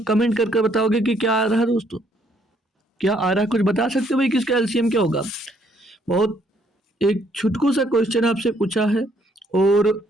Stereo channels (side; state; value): both; normal; correlation 0.68